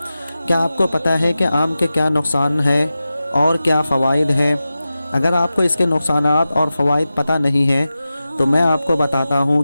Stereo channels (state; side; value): inverted; both; correlation -0.94